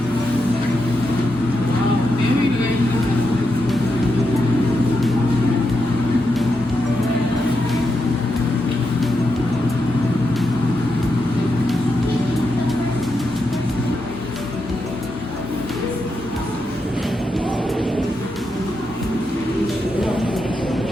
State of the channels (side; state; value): both; normal; correlation 0.85